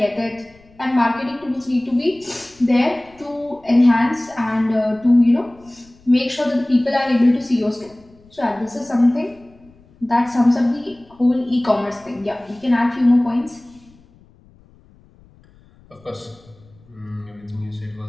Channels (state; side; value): noise; left; rumble, 28 dB below the sound